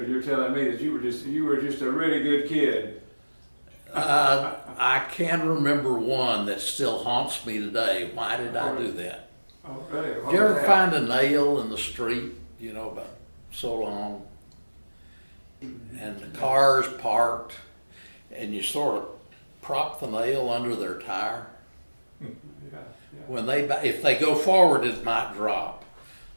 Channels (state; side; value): inverted; both; correlation -1.00